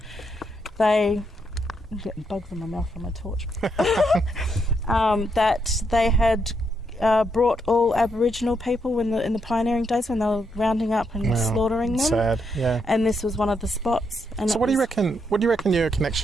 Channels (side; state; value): both; normal; correlation 0.78